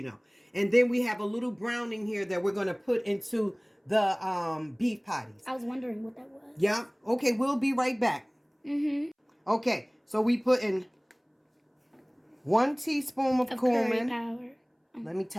know. And then we have a little browning here that we're going to put into the beef patties. I was wondering what that was. Yeah. Okay, we'll be right back. Okay, so we put in 1 teaspoon of cumin. Powder. Let me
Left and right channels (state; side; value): identical; both; correlation 1.00